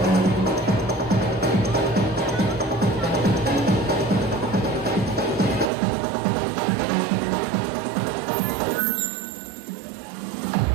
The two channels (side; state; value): left; drops out; at 5.7 s